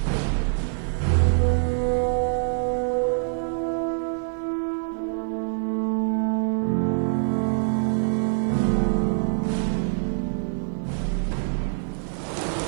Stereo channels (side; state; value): left; silent; digital silence